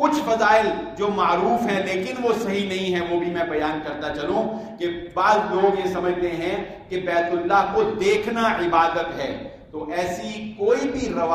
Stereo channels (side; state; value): both; identical; correlation 1.00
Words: فضائل جو معروف ہیں لیکن وہ صحیح نہیں ہیں وہ بھی میں بیان کرتا چلوں کہ بعض لوگ یہ سمجھتے ہیں کہ بیت اللہ کو دیکھنا عبادت ہے، تو ایسی کوئی بھی